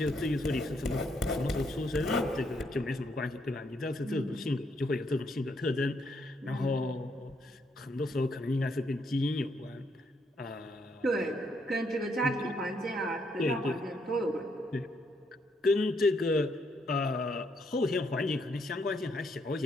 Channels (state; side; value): normal; both; correlation 0.74